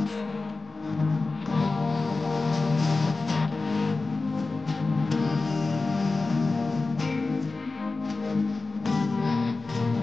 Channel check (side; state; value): right; quieter; 3.6 dB